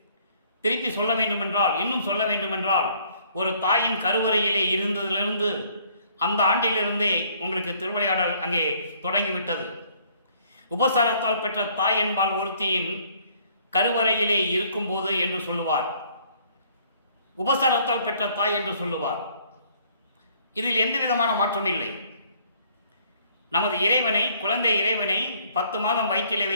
திருப்பி சொல்ல வேண்டுமென்றால், இன்னும் சொல்ல வேண்டுமென்றால், ஒரு தாயின் கருவறையிலே இருந்ததிலிருந்து அந்த ஆண்டிலிருந்தே உங்களுக்கு திருவிளையாடல் அங்கே தொடங்கிவிட்டது. உபசாரத்தால் பெற்ற தாய் என்பால் ஒருத்தியின் கருவறையிலே இருக்கும்போது என்று சொல்லுவார். உபசாரத்தால் பெற்ற தாய் என்று சொல்லுவார். இதில் எந்த விதமான மாற்றம் இல்லை. நமது இறைவனை, குழந்தை இறைவனை 10 மாதம் வயிற்றிலே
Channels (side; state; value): both; inverted; correlation -0.61